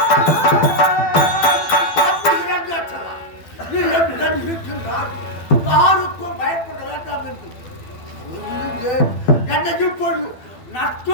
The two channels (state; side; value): late; right; 12 ms